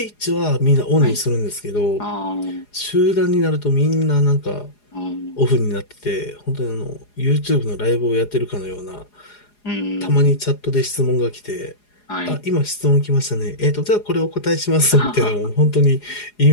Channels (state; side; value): late; right; 4.8 ms